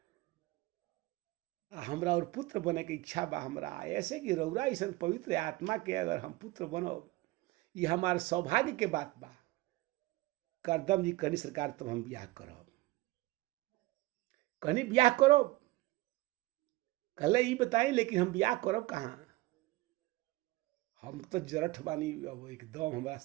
हमरा और पुत्र बने के इच्छा बा हमरा, ऐसे कि रउरा ऐसा पवित्र आत्मा के अगर हम पुत्र बनब ये हमार सौभाग्य के बात बा। करदम जी कहनी सरकार तब हम ब्याह करब। कहनी ब्याह करो, कहले ये बताई लेकिन हम ब्याह करब कहाँ? हम तो जरठ बानी, अब एकदम हमारा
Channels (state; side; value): quieter; left; 19.8 dB